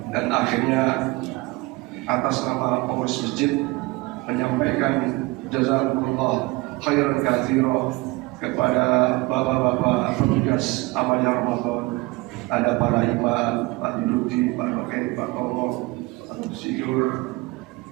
Dan akhirnya atas nama pengurus masjid menyampaikan jazakumullah khairan katsira kepada bapak-bapak petugas amalnya Ramadan. Ada para imam, Pak Dirudi, Pak Rokai, Pak Tomo, Pak Sidur,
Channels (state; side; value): quieter; left; 23.1 dB